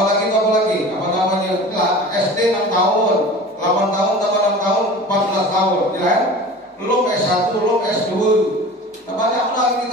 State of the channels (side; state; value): both; normal; correlation 0.38